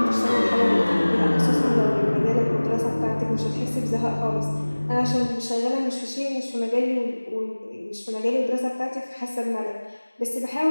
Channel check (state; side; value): inverted; both; correlation -1.00